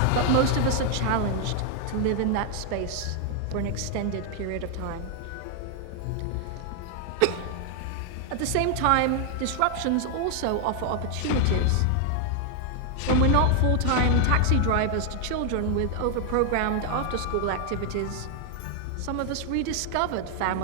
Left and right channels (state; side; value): different; both; correlation 0.00